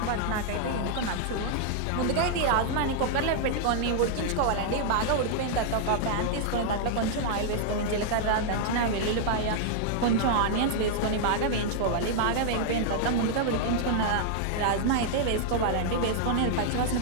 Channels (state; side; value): different; both; correlation -0.01